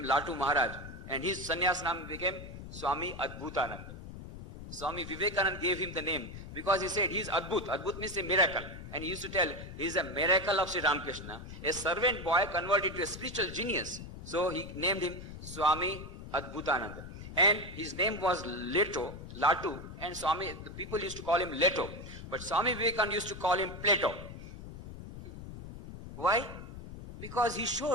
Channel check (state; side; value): noise; left; rumble, 11 dB below the sound